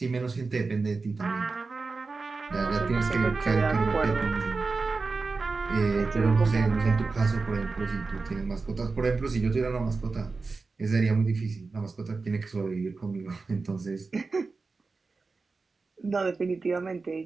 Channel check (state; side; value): quieter; left; 4.1 dB